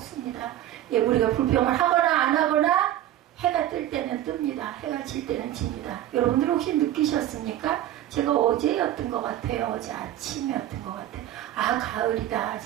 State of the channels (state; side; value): quieter; left; 12.9 dB